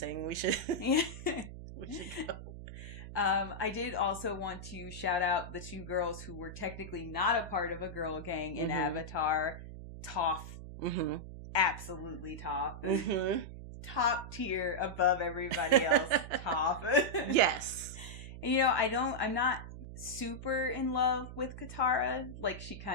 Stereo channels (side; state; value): right; noise; hum, 11 dB below the sound